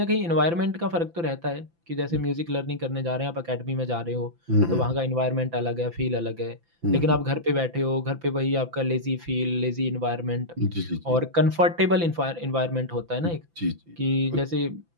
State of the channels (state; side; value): late; left; 5.9 ms